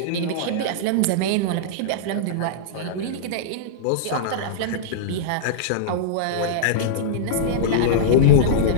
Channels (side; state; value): both; different; correlation -0.03